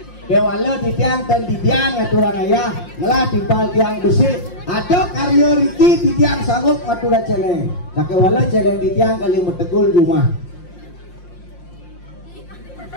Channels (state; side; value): late; right; 5.7 ms